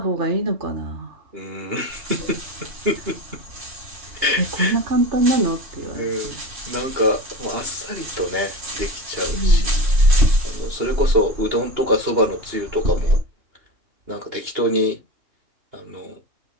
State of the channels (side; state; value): left; late; 2.8 ms